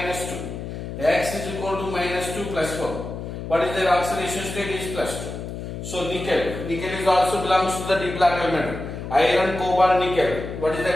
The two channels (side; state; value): left; noise; hum, 8 dB below the sound